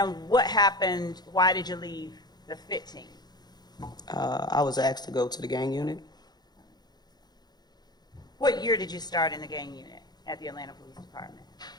what happened, why did you leave the FIT team? I was asked to go to the gang unit. What year did you start in the gang unit at the Atlanta Police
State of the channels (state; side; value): late; right; 0.20 ms